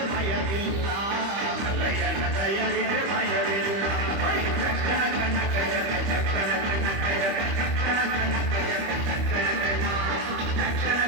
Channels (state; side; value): late; left; 25 ms